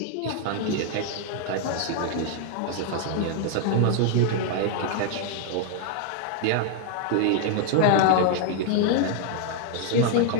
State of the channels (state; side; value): different; both; correlation 0.00